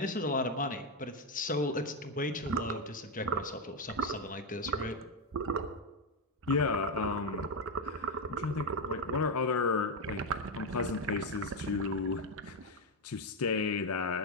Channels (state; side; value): normal; both; correlation 0.06